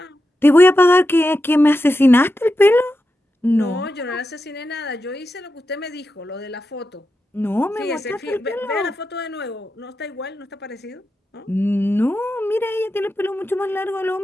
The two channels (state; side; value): normal; both; correlation 0.89